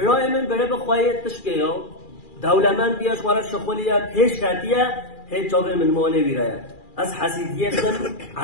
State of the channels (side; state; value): right; late; 2.4 ms